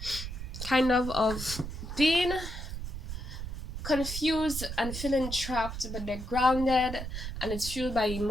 kind of being confused and feeling trapped, but they're grounded and it's fueled by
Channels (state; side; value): noise; right; rumble, 7 dB below the sound